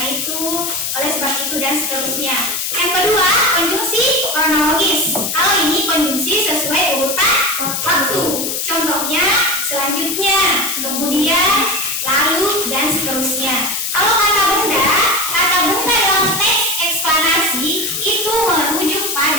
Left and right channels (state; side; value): noise; left; hiss, 2 dB below the sound